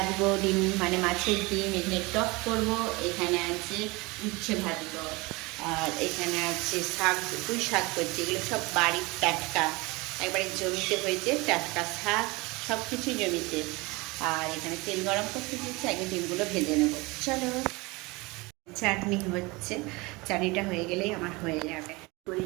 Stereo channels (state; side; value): quieter; left; 24.5 dB